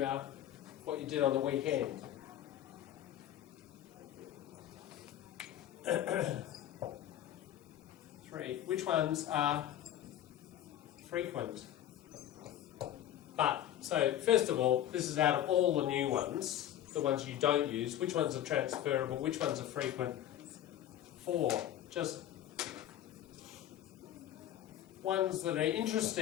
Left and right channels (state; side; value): quieter; right; 11.6 dB